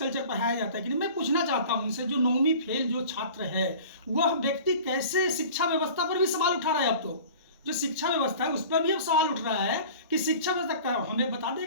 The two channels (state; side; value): inverted; both; correlation -0.42